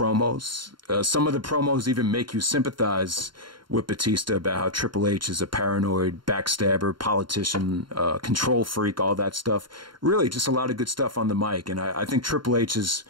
Some of the promos even make you sympathize with Batista about how Triple H is a paranoid backstabber, politician, control freak, all that stuff. Really, just a lot of good stuff on the mic. And I think Triple H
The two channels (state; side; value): late; left; 0.72 ms